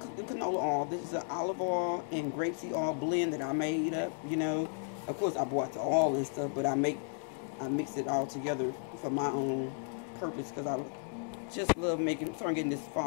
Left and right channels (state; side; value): silent; right; 55 dB below the other